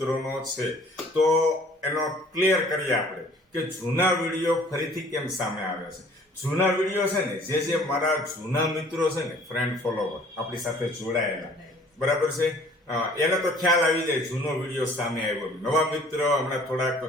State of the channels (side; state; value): both; normal; correlation 0.54